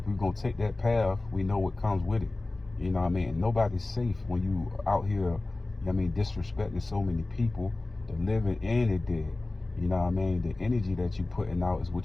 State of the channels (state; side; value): quieter; right; 3.0 dB